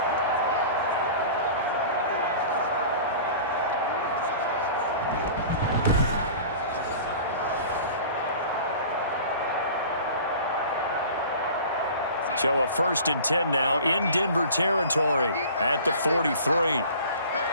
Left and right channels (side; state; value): both; inverted; correlation -0.41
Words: So a 1st and 10 now in Denver territory at the 43.